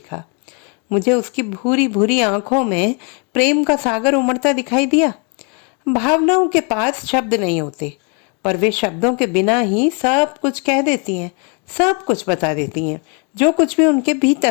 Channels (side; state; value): right; quieter; 36.4 dB